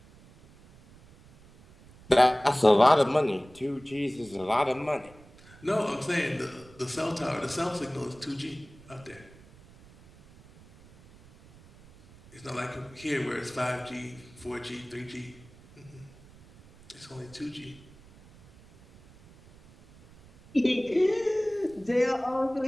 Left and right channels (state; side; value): noise; right; rumble, 24 dB below the sound